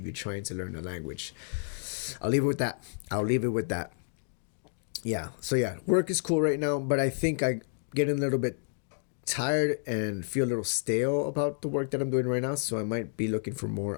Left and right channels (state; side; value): silent; right; digital silence